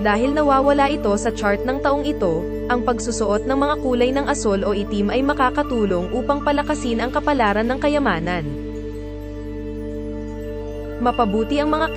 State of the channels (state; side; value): identical; both; correlation 1.00